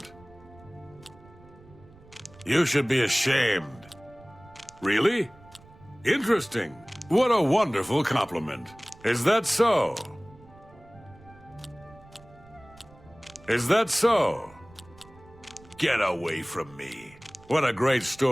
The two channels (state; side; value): noise; right; rumble, 24 dB below the sound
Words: You should be ashamed. Really? Interesting. What a wonderful compliment. Is that so? Is that so? Get away from me. What a great